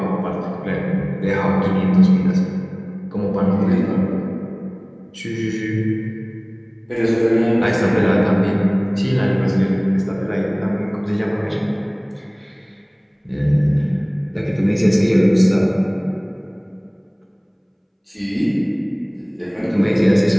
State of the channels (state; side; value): identical; both; correlation 1.00